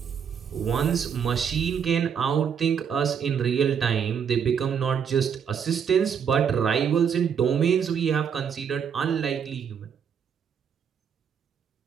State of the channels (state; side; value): quieter; left; 7.4 dB